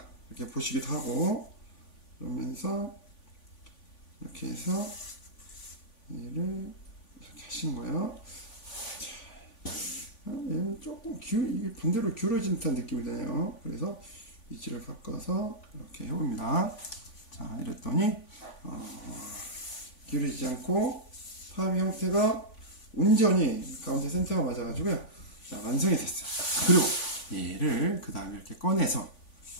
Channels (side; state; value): right; late; 3.5 ms